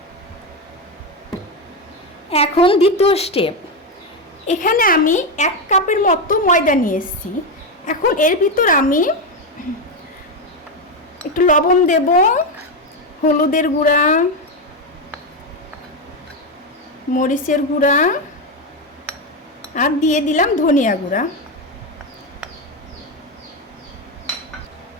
এখন দ্বিতীয় স্টেপ, এখানে আমি 1 কাপের মতো ময়দা নিয়েছি। এখন এর ভিতর আমি একটু লবণ দেব, হলুদের গুঁড়া, মরিচের গুঁড়া আর দিয়ে দিলাম ধনিয়া গুঁড়া।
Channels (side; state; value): both; normal; correlation 0.10